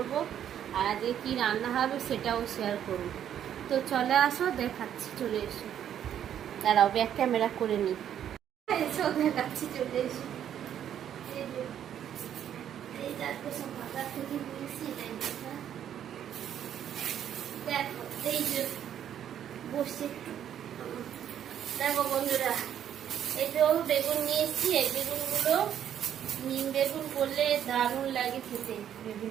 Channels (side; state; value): left; quieter; 9.9 dB